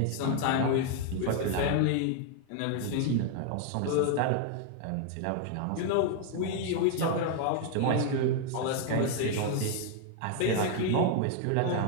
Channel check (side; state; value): both; different; correlation 0.00